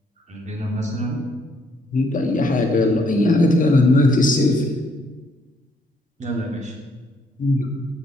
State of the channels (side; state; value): both; normal; correlation 0.69